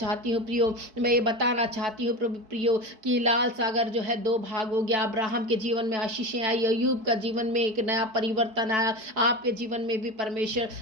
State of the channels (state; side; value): late; left; 4.6 ms